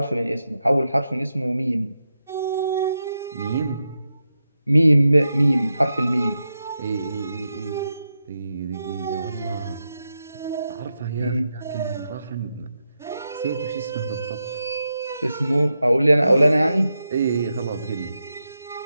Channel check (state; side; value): inverted; both; correlation -0.87